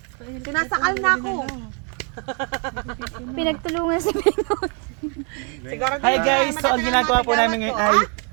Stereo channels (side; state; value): left; quieter; 37.1 dB